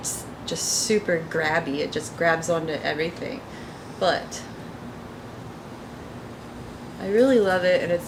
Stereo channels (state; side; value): identical; both; correlation 1.00